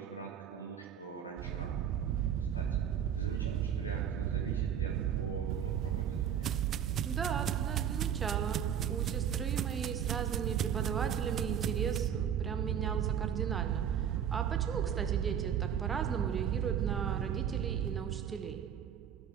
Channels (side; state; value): left; quieter; 8.8 dB